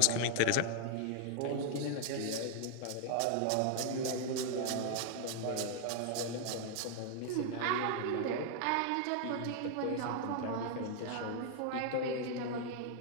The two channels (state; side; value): different; both; correlation -0.01